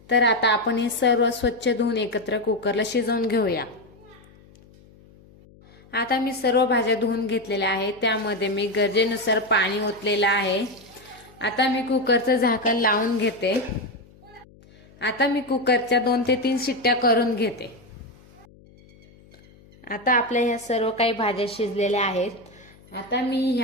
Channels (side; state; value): left; noise; hum, 26 dB below the sound